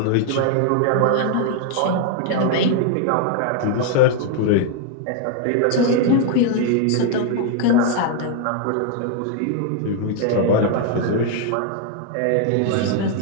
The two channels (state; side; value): different; both; correlation 0.00